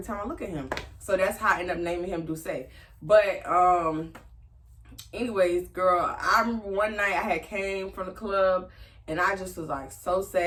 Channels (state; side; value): identical; both; correlation 1.00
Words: time I look at him. So that's how I ended up naming him Duce. But anyways, girl, I remember one night I had came from the club and I just was like so